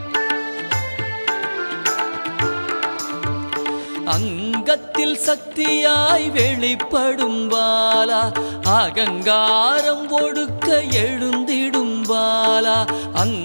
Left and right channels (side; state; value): both; inverted; correlation -1.00